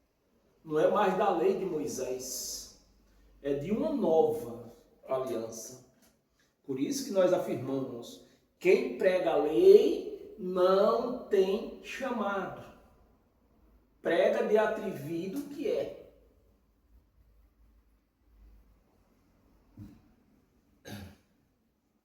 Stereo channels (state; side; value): identical; both; correlation 1.00